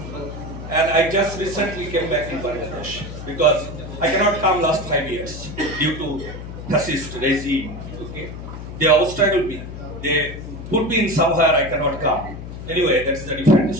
And I just recently came back in Bangladesh because I cannot come last 5 years due to fascist regime. Okay? They obstacle me. They put me in somewhere I cannot come. Anyway, that is a different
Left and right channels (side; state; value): left; noise; hum, 10 dB below the sound